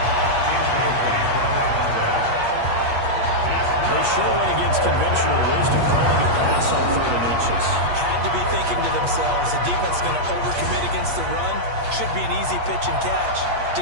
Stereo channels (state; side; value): late; left; 8.4 ms